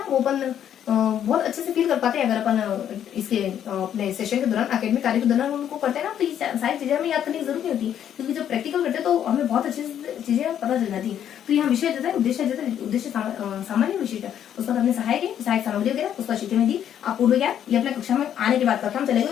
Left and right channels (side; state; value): right; quieter; 9.8 dB